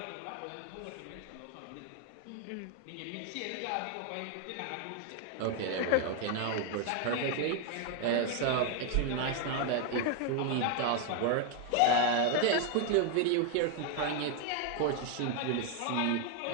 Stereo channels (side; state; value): both; different; correlation 0.01